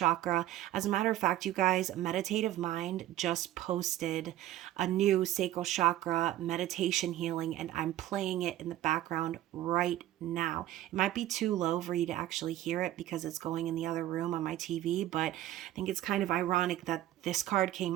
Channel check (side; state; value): left; quieter; 13.7 dB